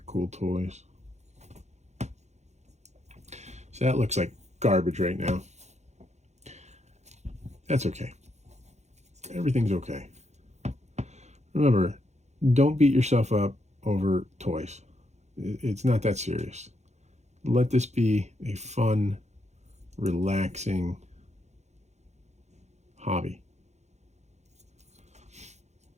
cool toys. So that looks like garbage right now. That's okay. Everything's okay. Remember, don't beat yourself up over toys. It's not that serious. Let this be a fun, relaxing hobby.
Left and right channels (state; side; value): late; left; 0.33 ms